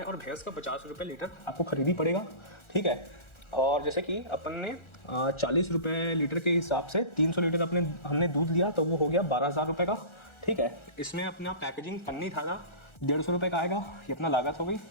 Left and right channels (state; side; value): late; right; 1.4 ms